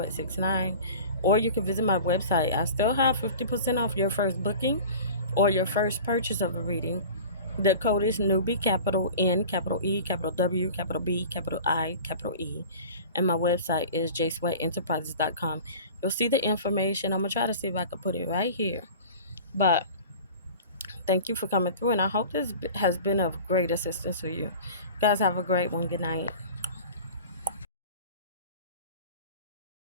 or you can visit my website. I still have 50% off your first booking or your first purchase of a reading. The code is NEWBIE, capital N, capital E, capital W, capital B, capital I, capital E. And my website is jsweatenterprises.com. You'll see the information. I'm going to try to see if I can put it right here. But thank you for coming through, and I hope this has been of great assistance to you. You guys have a great one. Good night.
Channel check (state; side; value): inverted; both; correlation -0.39